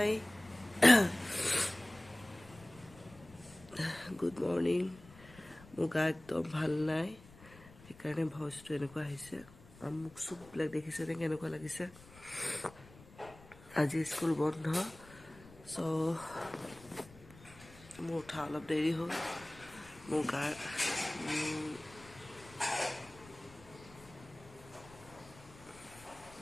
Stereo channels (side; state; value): left; noise; rumble, 21 dB below the sound